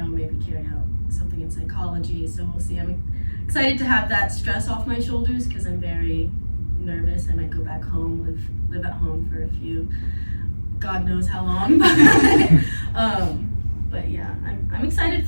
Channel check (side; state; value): both; inverted; correlation -1.00